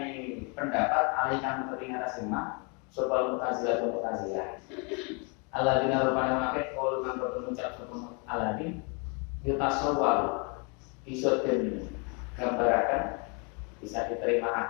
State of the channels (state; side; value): quieter; right; 34.4 dB